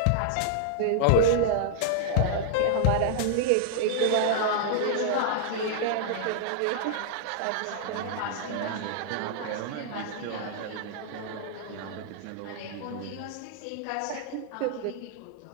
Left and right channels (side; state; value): both; different; correlation -0.01